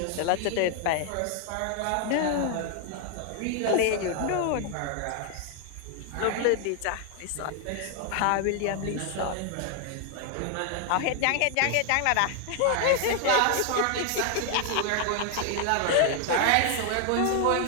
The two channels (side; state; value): both; different; correlation 0.00